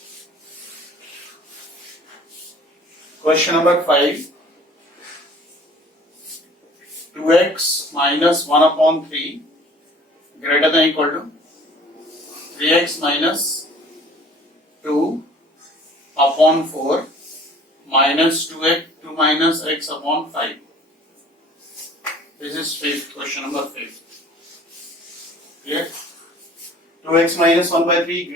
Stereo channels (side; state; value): both; normal; correlation 0.51